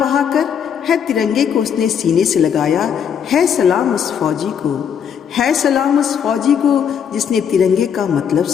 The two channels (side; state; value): right; quieter; 7.9 dB